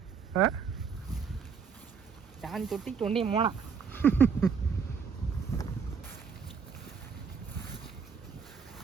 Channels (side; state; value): left; quieter; 6.2 dB